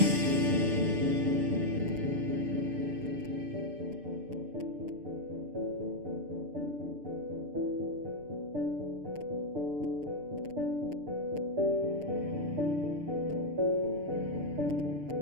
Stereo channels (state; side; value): late; left; 6.7 ms